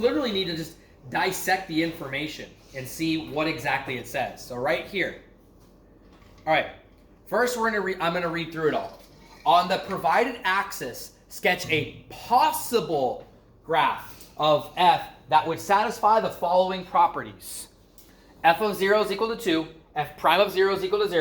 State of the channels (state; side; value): identical; both; correlation 1.00